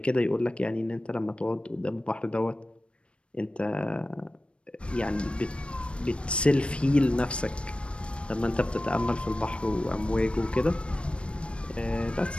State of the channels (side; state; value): right; late; 0.058 ms